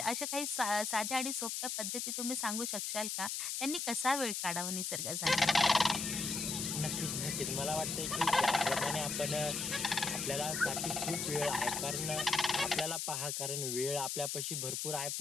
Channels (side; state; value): left; noise; hiss, 2 dB below the sound